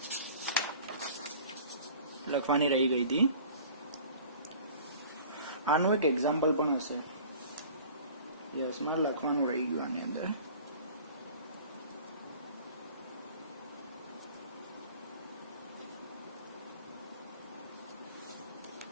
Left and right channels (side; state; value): both; inverted; correlation -0.45